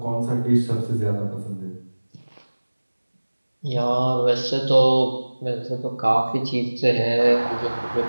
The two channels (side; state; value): both; inverted; correlation -1.00